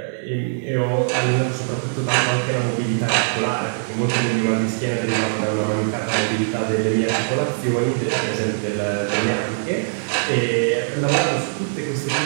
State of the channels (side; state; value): left; silent; 60 dB below the other